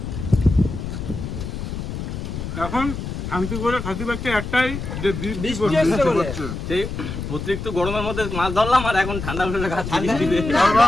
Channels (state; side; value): noise; left; rumble, 6 dB below the sound